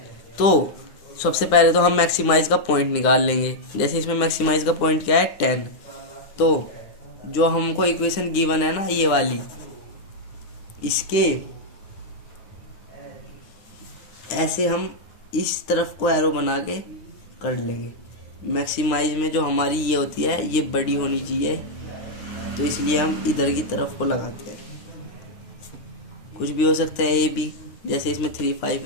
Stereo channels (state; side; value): late; right; 9.8 ms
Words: तो सबसे पहले तो हम मैक्सिमाइज का पॉइंट निकाल लेंगे। जैसे इसमें मैक्सिमाइज का पॉइंट क्या है 10, तो जो हमको इक्वेशन गिवन है ना ये वाली, इसके ऐसे हम इस तरफ को एरो बना के कर लेंगे। मैक्सिमाइज में जो हमारी ये होती है ये बड़ी होनी चाहिए, तो इसलिए हम इधर की तरफ को लगाते हैं। कुछ भी हो सकता है ए बी, जैसे इसमें 3 5